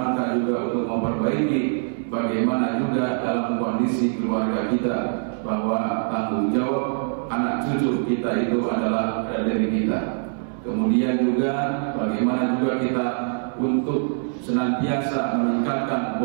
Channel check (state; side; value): silent; left; 63 dB below the other